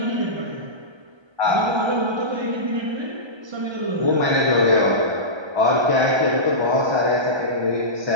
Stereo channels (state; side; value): late; left; 1.3 ms